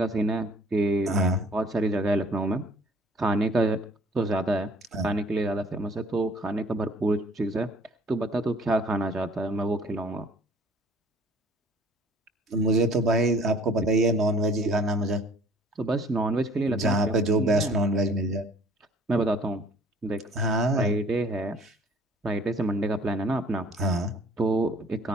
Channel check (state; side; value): normal; both; correlation 0.54